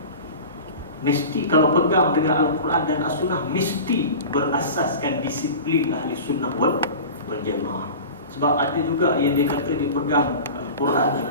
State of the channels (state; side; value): inverted; both; correlation -0.35